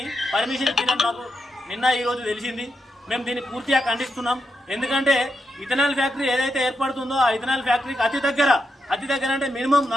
పర్మిషన్ ఇచ్చిందని మాకు నిన్న ఈరోజు తెలిసింది. మేము దీన్ని పూర్తిగా ఖండిస్తున్నాం. ఎందుకంటే ఇథనాల్ ఫ్యాక్టరీ ఏదైతే ఏర్పడుతుందో ఆ ఇథనాల్ ఫ్యాక్టరీకి అతి దగ్గర అంటే మినిమం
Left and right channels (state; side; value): normal; both; correlation 0.84